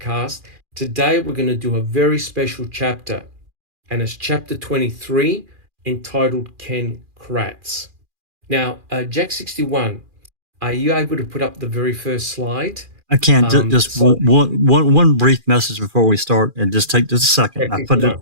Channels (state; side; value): late; left; 2.4 ms